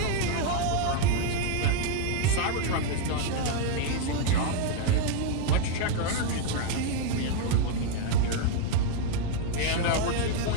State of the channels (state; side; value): different; both; correlation 0.00